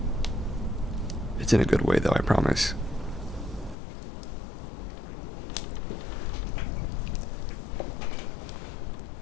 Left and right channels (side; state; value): right; drops out; at 3.8 s